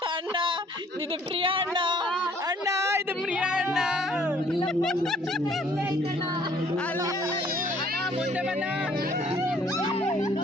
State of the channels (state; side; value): normal; both; correlation 0.60